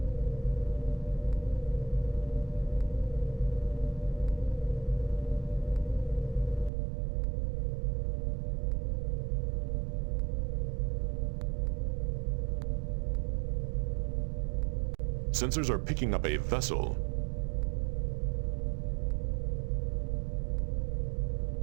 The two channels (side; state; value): left; drops out; at 6.7 s